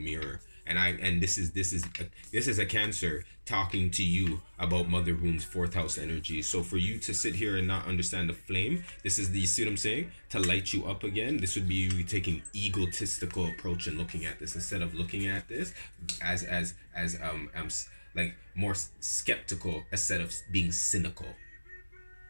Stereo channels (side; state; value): both; inverted; correlation -1.00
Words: and this is a Cancer talking to you about mother wounds, fourth house energy. So for you to sit here and not understand the flame, this is the, you see what I'm saying? To light you up again, this would be you taking egotistical approach and looking at this instead of looking at this as like more skeptical instead of being cynical.